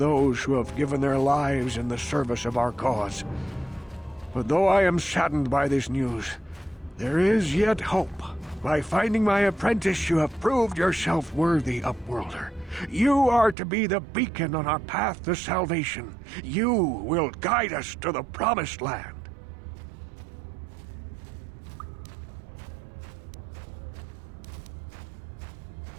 who have given their lives in the service of our cause. But though I am saddened by this news, there is yet hope. By finding my apprentice, you have proved yourself worthy, Upworlder. You are to be the beacon on our path to salvation. You will guide us to the promised land.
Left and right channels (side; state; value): left; drops out; at 13.6 s